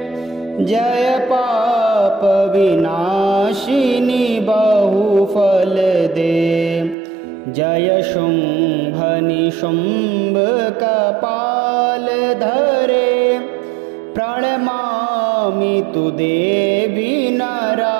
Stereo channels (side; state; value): left; drops out; at 7.0 s